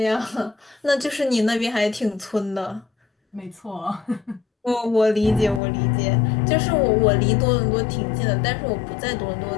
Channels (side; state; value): right; drops out; at 5.6 s